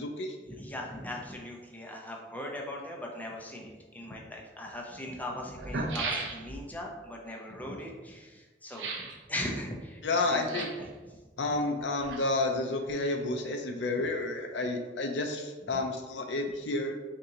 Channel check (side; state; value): both; normal; correlation 0.09